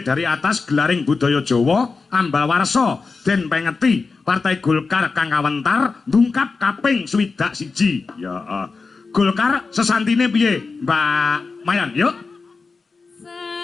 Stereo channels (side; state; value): right; quieter; 4.4 dB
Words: atas gelaring budaya Jawa ambal warsa den pengeti Partai Golkar kang kawentar ndungkap kaping 21. Ya, Golkar sesantine piye, Mbak Mayan? Yuk. Sadaya